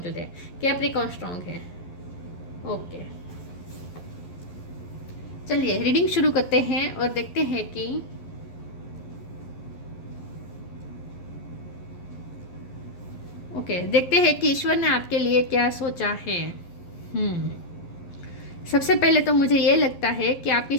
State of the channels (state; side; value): late; right; 11 ms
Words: है। कैप्रिकॉन स्ट्रॉन्ग है। ओके, चलिए रीडिंग शुरू करते हैं और देखते हैं कि देखते हैं कि ईश्वर ने आपके लिए क्या सोचा है। सबसे पहले तो मुझे ये लगता है कि आपकी